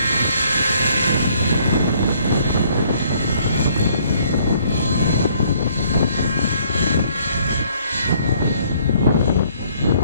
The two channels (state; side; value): inverted; both; correlation -0.63